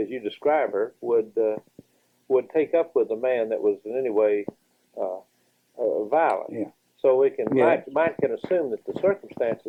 you describe her, would would take up with a man that was in any way violent. Yeah. So we can Yeah. might can assume that the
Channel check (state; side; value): identical; both; correlation 1.00